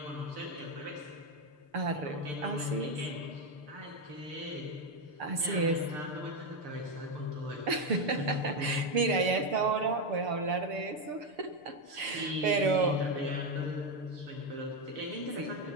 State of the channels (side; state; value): left; late; 6.7 ms